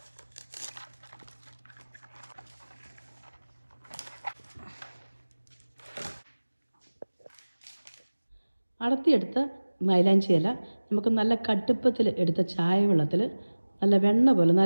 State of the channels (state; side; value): inverted; both; correlation -1.00